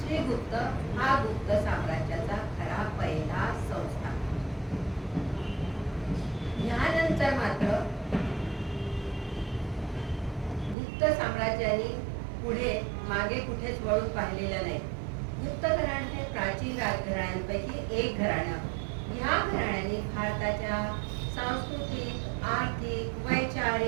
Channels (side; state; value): left; drops out; at 10.8 s